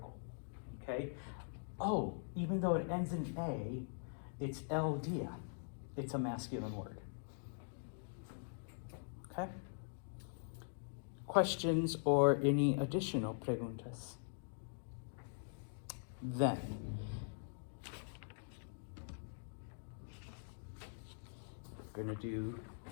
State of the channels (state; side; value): silent; right; digital silence